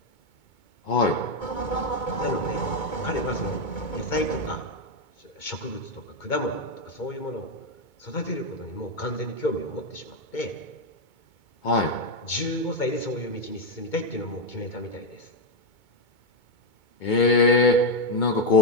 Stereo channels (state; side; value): late; right; 2.2 ms